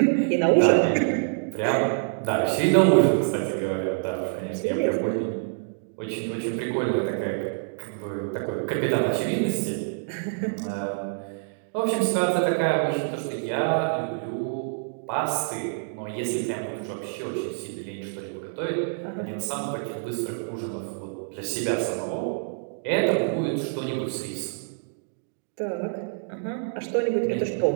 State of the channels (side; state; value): left; silent; digital silence